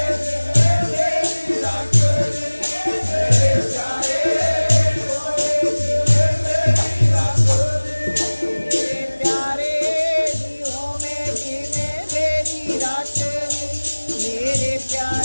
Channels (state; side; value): inverted; both; correlation -1.00